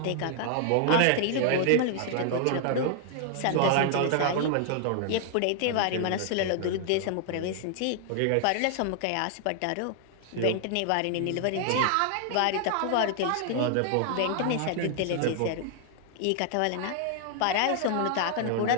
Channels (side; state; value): both; different; correlation 0.00